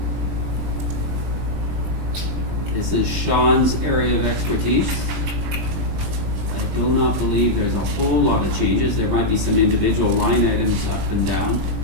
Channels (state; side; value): late; left; 20 ms